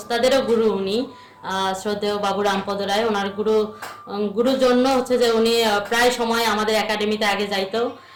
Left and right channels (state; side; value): identical; both; correlation 1.00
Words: গুরু উনি, শ্রদ্ধেয় বাবু রামপদ রায়। ওনার গুরুর জন্য হচ্ছে যে উনি প্রায় সময় আমাদের একাডেমিতে আগে যাইতো।